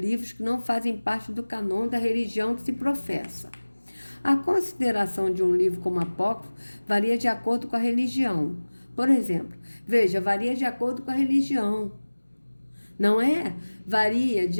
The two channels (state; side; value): inverted; both; correlation -1.00